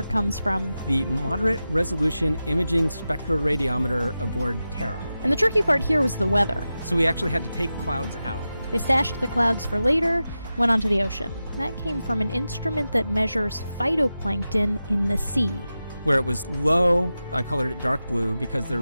comes from the moderate resolution imaging spectroradiometer aboard Terra. And the tricky part here was the weather. So we actually had to take clouds out. They stashed the clouds for later, went onto the ocean. That came from an instrument that measures phytoplankton in the sea. Where it was low, I colored it dark blue because they're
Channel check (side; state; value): both; inverted; correlation -0.93